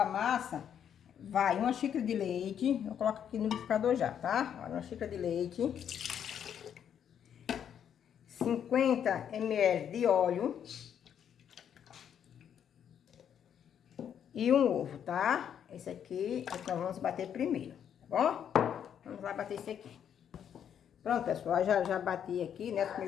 massa vai uma xícara de leite, eu coloco aqui no liquidificador já, tá? Olha, uma xícara de leite. 50 ml de óleo e um ovo, tá? Esse aqui é que nós vamos bater primeiro, tá bom? Vamos lá bater esse aqui. Pronto, pessoal, já bati aqui, né, os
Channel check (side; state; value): right; quieter; 8.8 dB